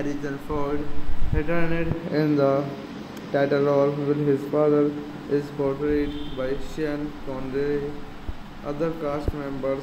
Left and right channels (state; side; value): identical; both; correlation 1.00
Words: Ford returned in the title role while his father is portrayed by Sean Connery. Other cast members